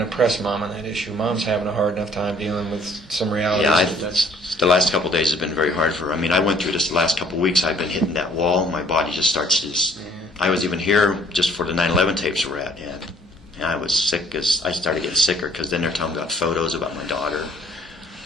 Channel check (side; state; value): both; normal; correlation 0.59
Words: to press Mom on that issue. Mom's having a hard enough time dealing with some realities. Yeah, the last couple of days have been very hard for her. I mean, I went through this the last couple of weeks. I've been hitting that wall. My body just starts to just... I was even here just for the 9/11 tapes we're at, and I was sick as I started getting sicker because then they're telling me about photos about my daughter,